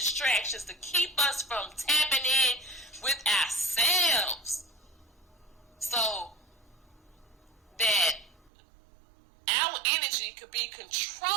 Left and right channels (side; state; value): left; drops out; at 8.5 s